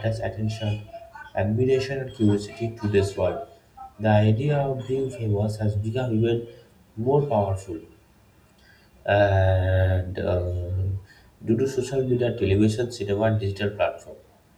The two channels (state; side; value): identical; both; correlation 1.00